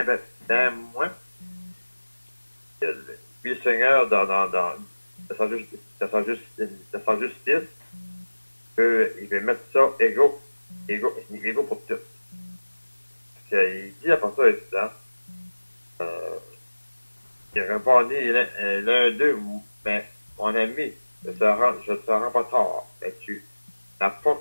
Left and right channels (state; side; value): inverted; both; correlation -1.00